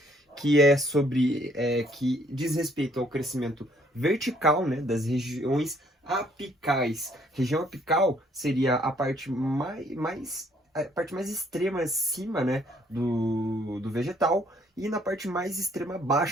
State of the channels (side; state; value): both; normal; correlation 0.64